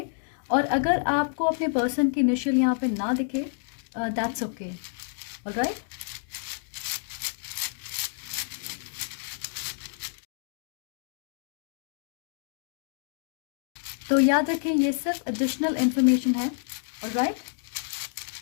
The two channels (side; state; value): right; silent; digital silence